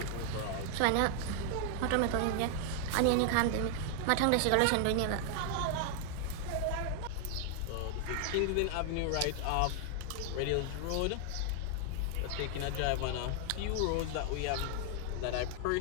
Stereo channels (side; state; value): both; different; correlation 0.00